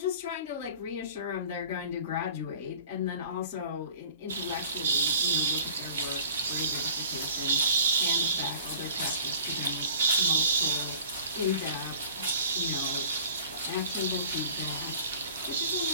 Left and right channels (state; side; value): inverted; both; correlation -0.47